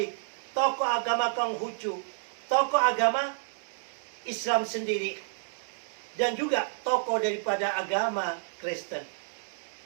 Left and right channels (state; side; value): silent; left; digital silence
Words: tokoh agama Konghucu, tokoh agama Islam sendiri, dan juga tokoh daripada agama Kristen.